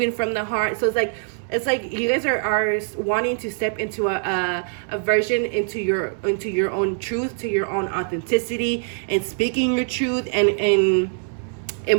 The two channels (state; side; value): silent; left; 63 dB below the other